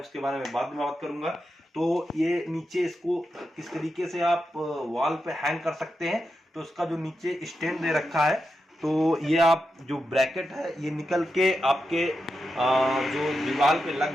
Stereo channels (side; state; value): both; normal; correlation 0.88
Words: उसके बारे में बाद में बात करूंगा। तो ये नीचे इसको किस तरीके से आप वॉल पे हैंग कर सकते हैं। तो इसका जो नीचे स्टैंड दे रखा है, तो ये आप जो ब्रैकेट है ये निकल के आपके जो दीवार पे